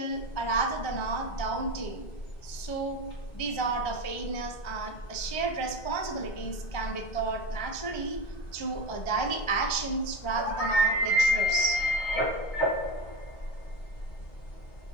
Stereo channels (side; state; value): right; late; 1.3 ms